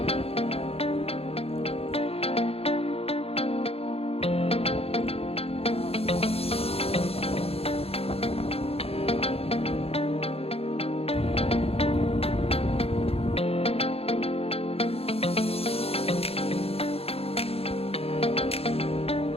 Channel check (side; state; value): right; late; 0.29 ms